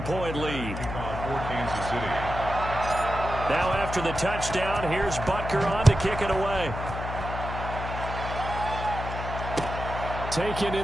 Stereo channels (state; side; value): noise; left; hum, 6 dB below the sound